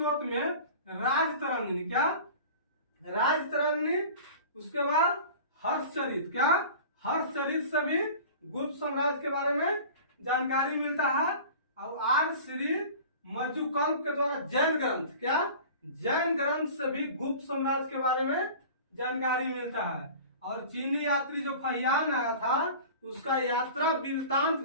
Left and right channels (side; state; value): both; inverted; correlation -0.39